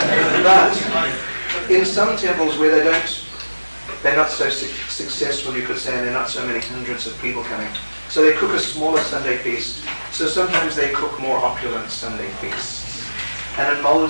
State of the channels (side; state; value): both; inverted; correlation -1.00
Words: But in some temples where they're not so successful, you could say, and there are not so many hundreds of people coming. So they cook a smaller Sunday feast. So sometimes they cook more opulent Sunday feasts. And in